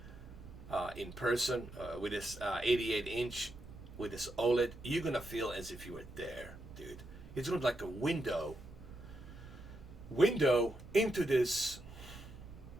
in person with this 88-inch with this OLED, you're going to feel as if you were there, dude. It's going to be like a window into this.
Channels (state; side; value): noise; right; rumble, 17 dB below the sound